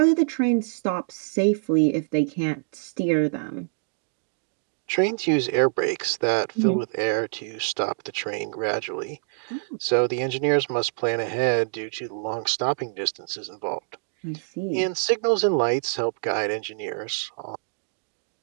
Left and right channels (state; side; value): silent; left; digital silence